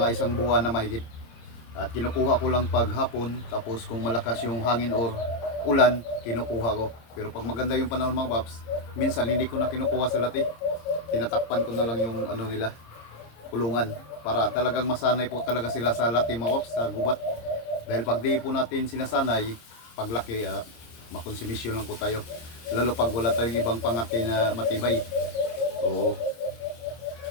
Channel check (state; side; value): late; right; 26 ms